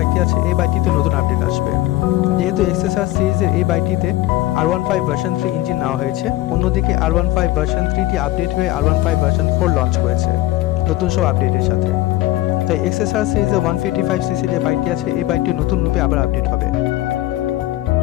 আছে, এই বাইকটিতে নতুন আপডেট আসবে। যেহেতু XSR সিরিজের এই বাইকটিতে R15 ভার্সন 3 ইঞ্জিন নেওয়া হয়েছে, অন্যদিকে R15 ভার্সন 3টি আপডেট হয়ে R15 ভার্সন 4 লঞ্চ করেছে নতুন সব আপডেটের সাথে। তাই XSR সিরিজের 155cc যে বাইকটি আছে, এই বাইকটি নতুন রূপে আবার আপডেট হবে,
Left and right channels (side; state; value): right; quieter; 16.6 dB